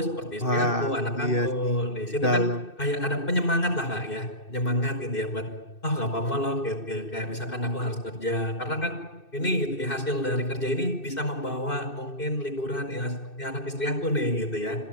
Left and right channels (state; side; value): late; right; 2.6 ms